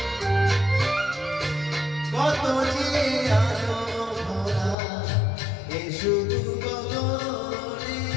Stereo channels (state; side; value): drops out; right; at 4.8 s